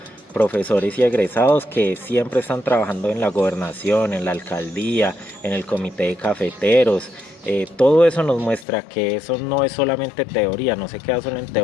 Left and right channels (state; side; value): drops out; right; at 8.7 s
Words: Profesores y egresados que siempre están trabajando en la gobernación, en la alcaldía, en el comité de cafeteros. Todo eso nos muestra que eso no es solamente teoría, no se queda solo en